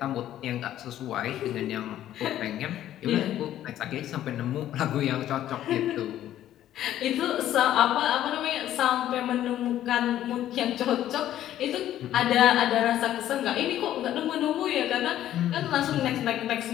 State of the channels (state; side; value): quieter; right; 12.3 dB